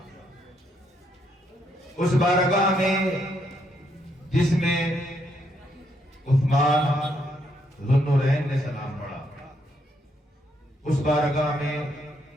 اس بارگاہ میں جس میں عثمان ذو النورین نے سلام پڑھا، اس بارگاہ میں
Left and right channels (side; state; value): both; normal; correlation 0.75